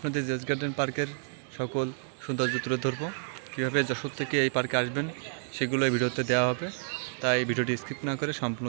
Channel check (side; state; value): left; silent; digital silence